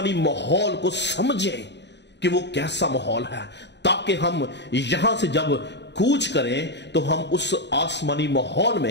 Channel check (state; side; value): late; right; 0.51 ms